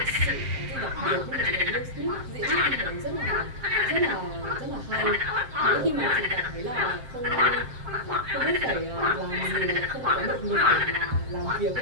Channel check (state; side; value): late; left; 7.5 ms